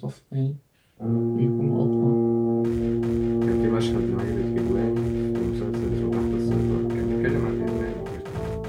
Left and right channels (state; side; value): identical; both; correlation 1.00